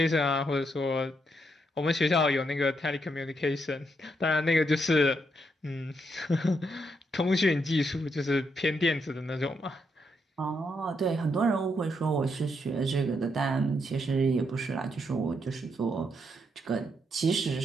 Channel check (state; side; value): normal; both; correlation 0.78